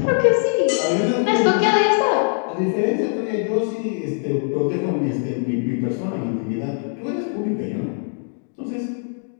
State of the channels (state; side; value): silent; right; 63 dB below the other